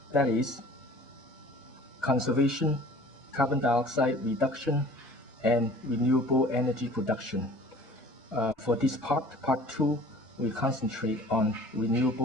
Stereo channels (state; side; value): normal; both; correlation 0.47